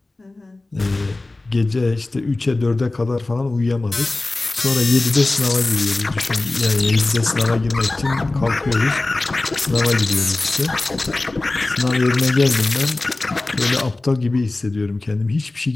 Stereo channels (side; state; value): right; quieter; 3.0 dB